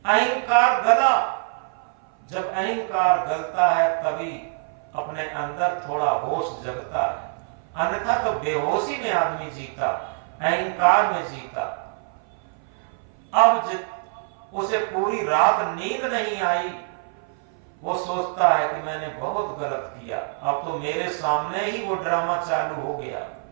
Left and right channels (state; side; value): silent; left; 57 dB below the other